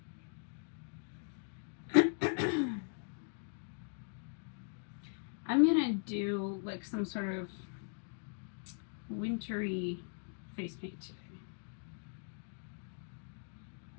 I'm gonna do like some sort of wintry face paint today.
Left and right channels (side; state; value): right; silent; 51 dB below the other